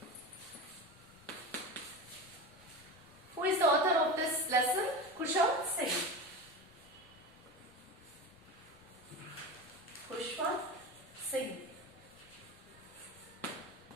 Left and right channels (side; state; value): left; noise; rumble, 27 dB below the sound